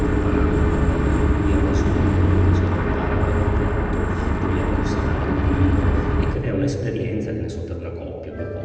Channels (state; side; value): identical; both; correlation 1.00